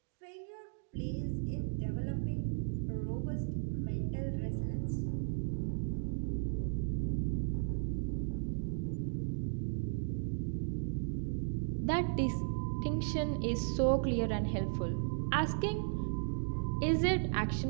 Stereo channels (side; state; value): left; silent; digital silence